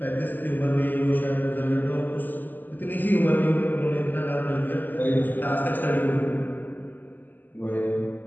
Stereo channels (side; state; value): right; late; 0.088 ms